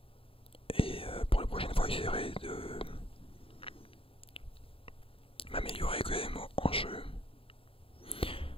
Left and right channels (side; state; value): right; late; 0.27 ms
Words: Et pour la prochaine fois, j'essaierai de m'améliorer quand même en jeu.